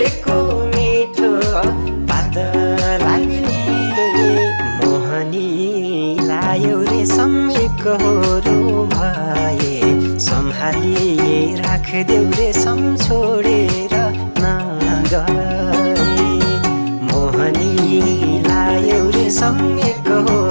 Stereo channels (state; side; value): inverted; both; correlation -1.00